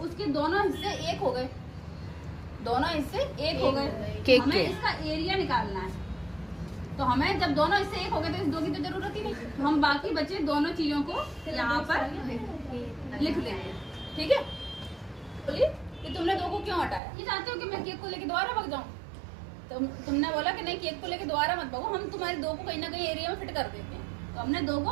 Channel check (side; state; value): left; drops out; at 17.0 s